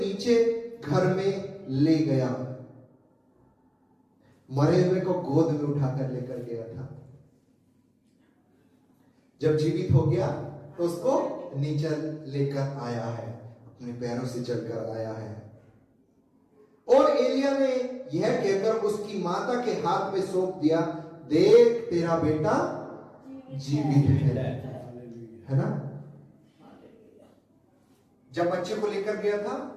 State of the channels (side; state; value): both; identical; correlation 1.00